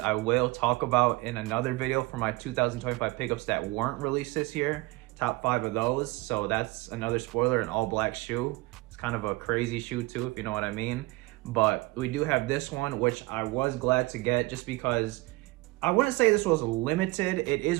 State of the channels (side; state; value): left; quieter; 22.1 dB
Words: will talk about in another video for my 2025 pickups that weren't released this year. Top 5 of those. So that's another spoiler, an all black shoe. It's kind of a crazy shoe too, if you know what I mean. But we do have this one, which I was glad to get just because I wouldn't say this was limited. It